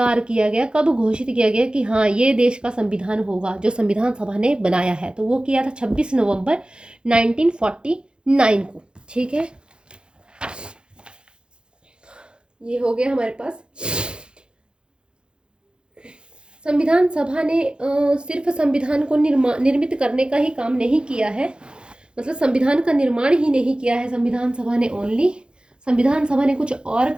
किया गया, कब घोषित किया गया कि हाँ ये देश का संविधान होगा जो संविधान सभा ने बनाया है, तो वो किया था 26 नवंबर 1949 को, ठीक है। ये हो गया हमारे पास। संविधान सभा ने सिर्फ संविधान को निर्मित करने का ही काम नहीं किया है, मतलब संविधान का निर्माण ही नहीं किया है संविधान सभा ने, ओनली संविधान सभा ने कुछ और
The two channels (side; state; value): left; late; 0.051 ms